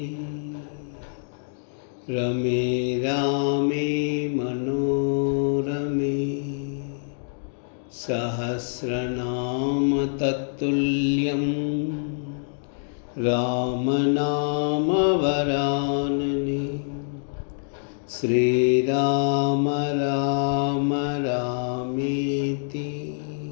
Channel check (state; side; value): silent; right; digital silence